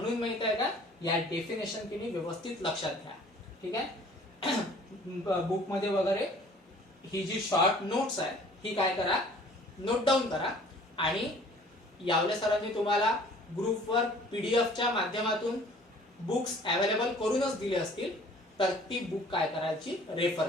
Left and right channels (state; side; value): normal; both; correlation 0.52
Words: माहित आहे का या डेफिनेशन तुम्ही व्यवस्थित लक्षात घ्या. ठीक आहे. बुक मध्ये वगैरे ही जी शॉर्ट नोट्स आहे ही काय करा? नोट डाऊन करा. आणि यावले सरांनी तुम्हाला ग्रुपवर पीडीएफच्या माध्यमातून बुक्स अवेलेबल करूनच दिले असतील तर ती बुक काय करायची? रेफर